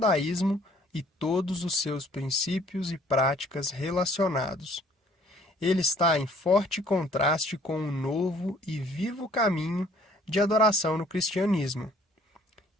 e todos os seus princípios e práticas relacionados. Ele está em forte contraste com o novo e vivo caminho de adoração no cristianismo,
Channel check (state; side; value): normal; both; correlation 0.58